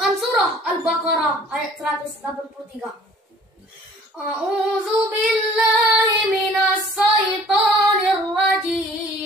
surah Al-Baqarah ayat 183. A'udzu billahi minas syaitonir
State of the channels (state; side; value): normal; both; correlation 0.52